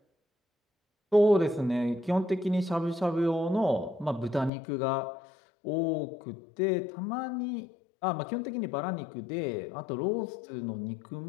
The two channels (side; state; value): right; drops out; at 4.5 s